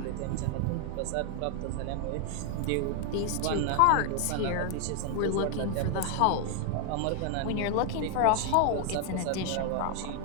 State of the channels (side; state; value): both; different; correlation 0.00